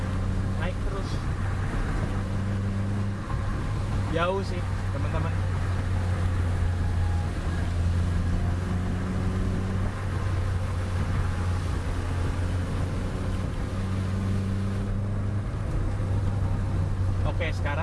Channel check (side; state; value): both; identical; correlation 1.00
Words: naik terus. Jauh sih teman-teman. Oke,